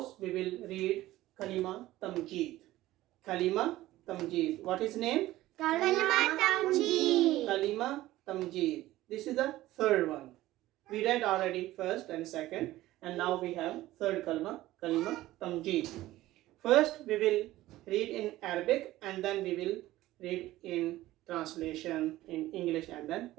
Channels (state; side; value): quieter; left; 16.1 dB